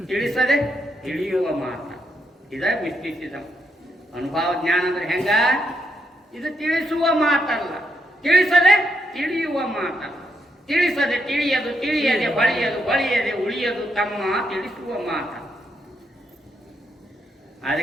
ತಿಳಿಸದೆ ತಿಳಿಯುವ ಮಾತ. ಇದ ಮಿಸ್ಟಿಸಿಸಂ. ಅನುಭವ ಜ್ಞಾನ ಅಂದ್ರೆ ಹೆಂಗ? ಇದು ತಿಳಿಸುವ ಮಾತಲ್ಲ, ತಿಳಿಸದೆ ತಿಳಿಯುವ ಮಾತಲ್ಲ. ತಿಳಿಸದೆ ತಿಳಿಯದು, ತಿಳಿಯದೆ ಹೊಳೆಯದು, ಹೊಳೆಯದೆ ಉಳಿಯದು ತಮ್ಮ ತಿಳಿಸುವ ಮಾತ.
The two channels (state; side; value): normal; both; correlation 0.79